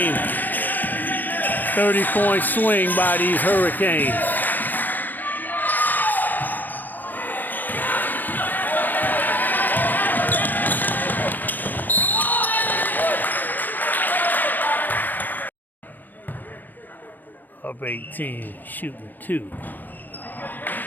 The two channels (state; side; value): late; right; 0.090 ms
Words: 30-point swing by these Hurricanes. Up 18, shooting 2.